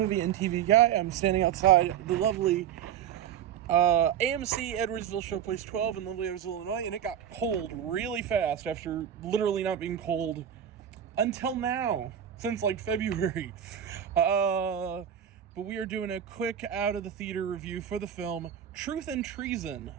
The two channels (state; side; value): quieter; left; 9.5 dB